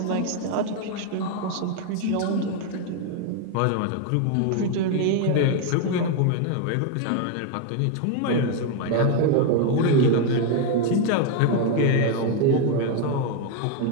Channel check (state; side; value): different; both; correlation 0.01